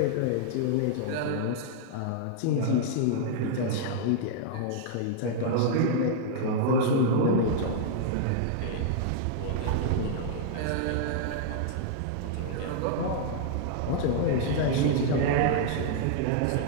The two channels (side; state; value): both; different; correlation -0.01